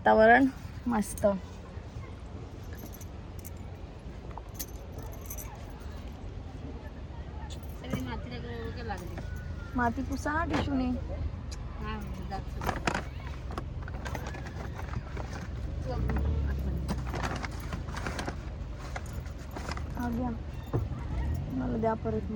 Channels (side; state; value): both; identical; correlation 1.00